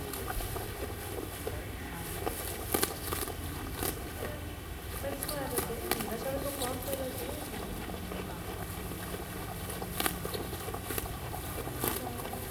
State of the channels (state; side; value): identical; both; correlation 1.00